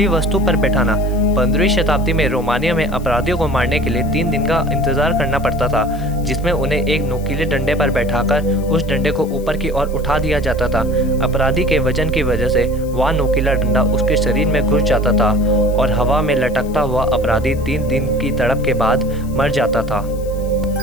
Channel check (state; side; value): noise; left; hiss, 23 dB below the sound